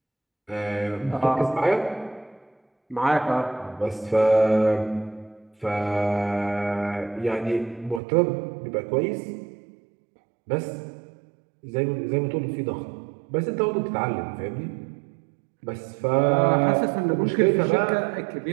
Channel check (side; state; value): left; drops out; at 8.0 s